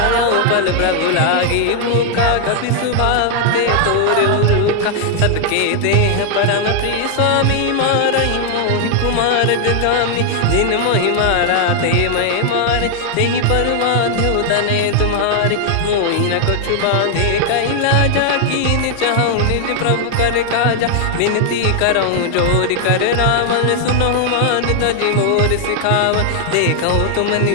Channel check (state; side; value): different; both; correlation 0.00